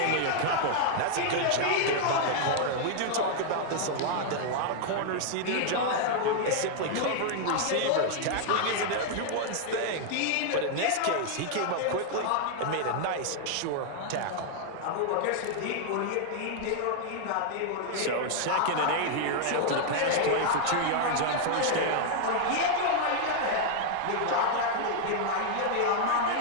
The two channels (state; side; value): different; both; correlation 0.00